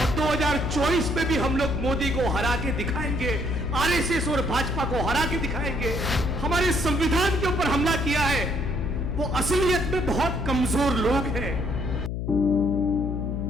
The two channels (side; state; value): left; noise; hum, 3 dB below the sound